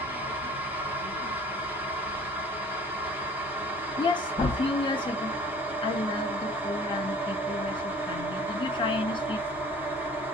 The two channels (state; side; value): normal; both; correlation 0.50